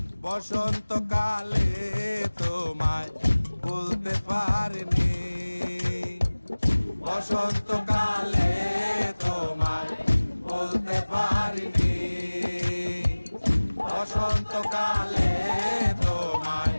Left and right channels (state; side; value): inverted; both; correlation -1.00